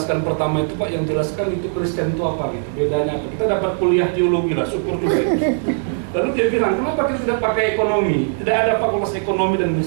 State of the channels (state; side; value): silent; left; digital silence